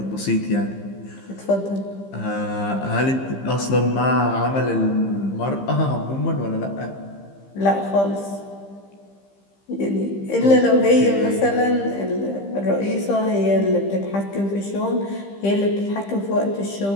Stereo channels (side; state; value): right; late; 15 ms